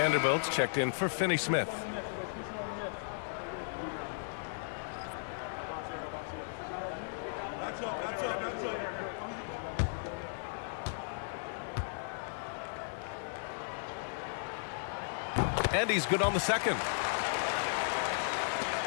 checked in for Finney-Smith. And he's good on the second.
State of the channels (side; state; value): right; silent; digital silence